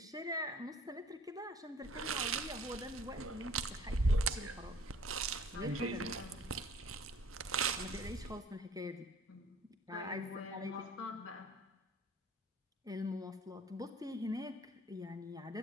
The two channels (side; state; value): both; normal; correlation 0.52